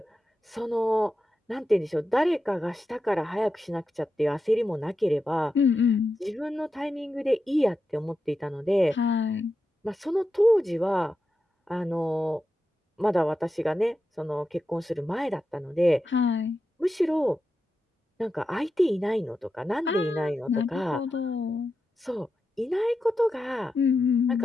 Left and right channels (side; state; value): both; normal; correlation 0.89